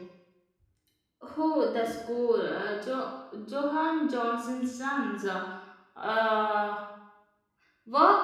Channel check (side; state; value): both; identical; correlation 1.00